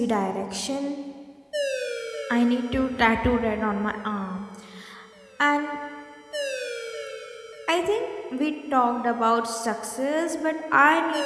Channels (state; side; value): identical; both; correlation 1.00